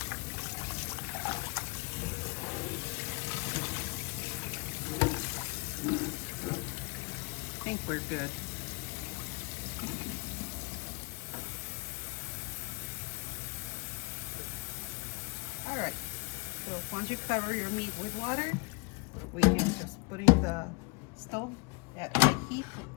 I think we're good. All right, so once you cover your meat with water, we can just put it in the stove at high heat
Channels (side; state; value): right; quieter; 30.1 dB